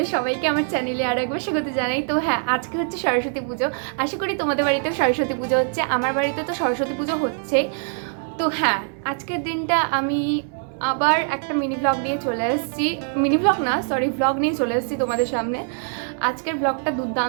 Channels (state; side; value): silent; left; 56 dB below the other